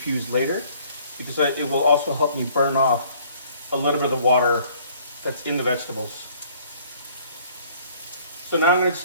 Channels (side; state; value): both; inverted; correlation -0.58